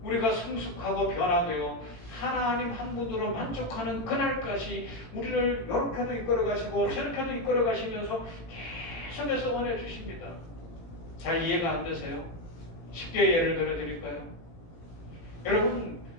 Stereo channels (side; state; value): right; late; 18 ms